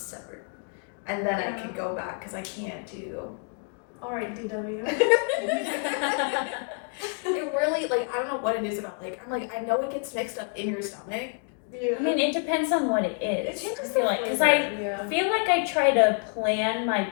And then I can go back because I can't do. All right, DW. It really, like, I don't know what it is about, like, I'm like, I know it gets mixed up in your stomach. Yeah. I mean, it depends on what it is. It changes I feel the like, because flavor, I yeah. feel like I try to plan my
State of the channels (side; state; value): right; quieter; 39.8 dB